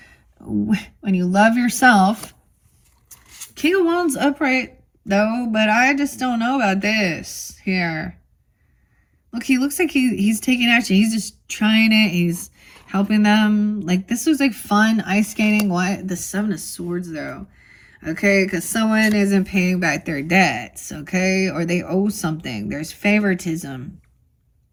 When you love yourself. King of Wands upright, though, but I just don't know about this here. Look, he looks like he's taking action. He's just trying it. He's helping them. Like, this was like fun ice skating. What? The Seven of Swords, though. Okay, because someone isn't paying back their debts, okay? Or they owe something. There's favoritism.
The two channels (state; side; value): identical; both; correlation 1.00